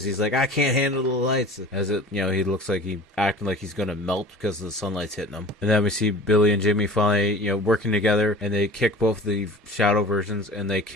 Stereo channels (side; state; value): both; normal; correlation 0.41